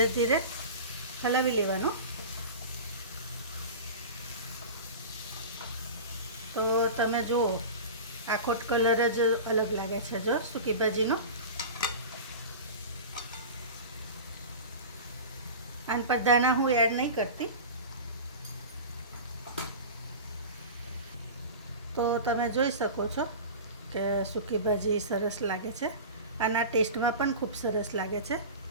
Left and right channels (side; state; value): both; inverted; correlation -0.31